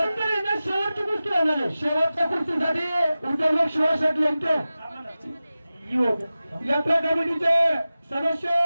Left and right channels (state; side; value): inverted; both; correlation -0.95